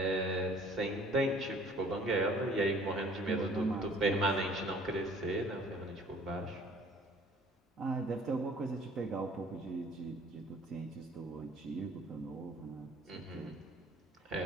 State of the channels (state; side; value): normal; both; correlation 0.54